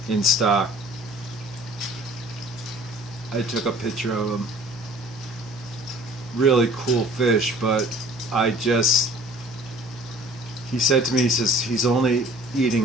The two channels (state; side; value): normal; both; correlation 0.50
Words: in stock. I took a picture of him. Really cool fish, but he said to me, he says he's only